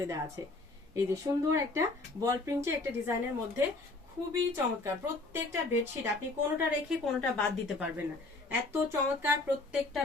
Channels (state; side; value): quieter; right; 3.2 dB